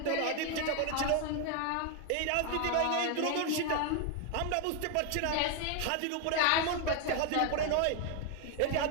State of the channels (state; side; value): different; both; correlation 0.01